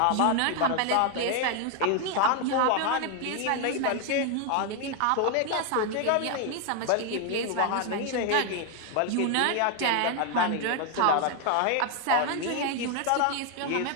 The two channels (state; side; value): different; both; correlation 0.01